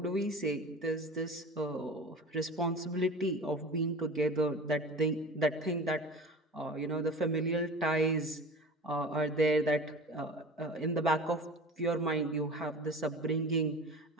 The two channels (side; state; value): both; normal; correlation 0.36